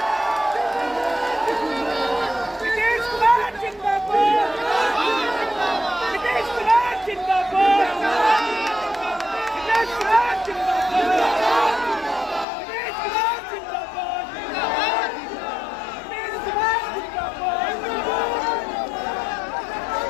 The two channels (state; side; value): drops out; right; at 12.5 s